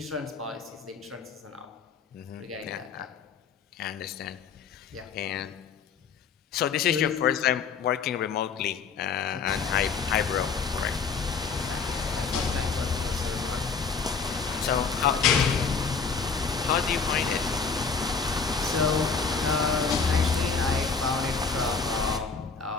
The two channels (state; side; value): quieter; right; 5.5 dB